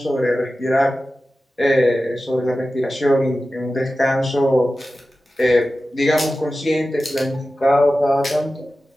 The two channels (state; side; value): normal; both; correlation 0.94